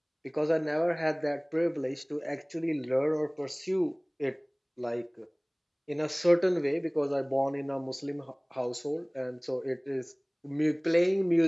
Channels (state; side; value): identical; both; correlation 1.00